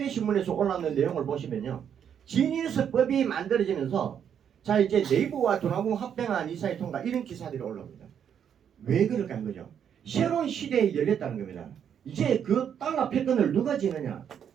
신문에서 올라오는 내용을 보시면요. 지니어스법이 만들어지면서 자, 이제 네이버와 두나무 합병한 이사회 통과 이런 기사들이 올라옵니다. 왜 그럴까 하는 거죠? 새로운 시대에 열렸다는 겁니다. 이제 그 달러 패권을 누가 지느냐?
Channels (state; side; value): quieter; left; 8.4 dB